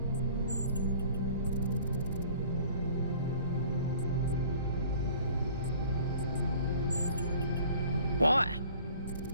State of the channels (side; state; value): both; inverted; correlation -0.50